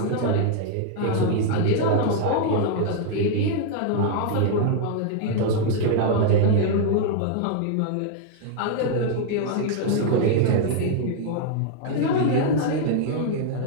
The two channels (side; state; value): both; different; correlation 0.00